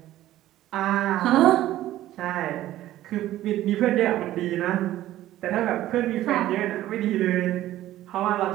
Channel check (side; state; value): left; quieter; 14.2 dB